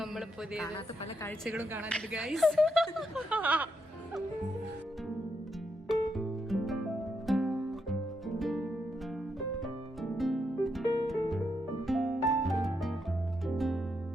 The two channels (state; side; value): normal; both; correlation 0.80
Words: പുതിയ പല കാഴ്ചകളും കാണാനുണ്ട് ഗൈസ്.